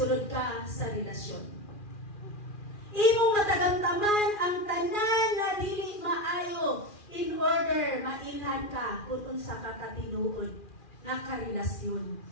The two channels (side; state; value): right; late; 2.4 ms